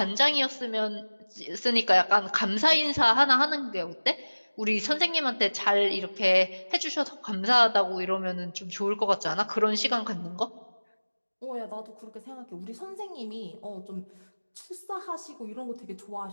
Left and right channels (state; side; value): inverted; both; correlation -1.00